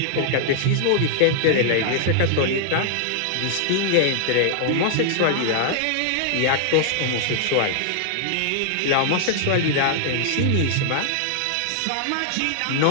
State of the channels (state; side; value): different; both; correlation 0.00